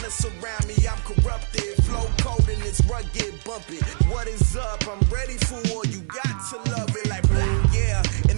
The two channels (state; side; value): silent; left; 60 dB below the other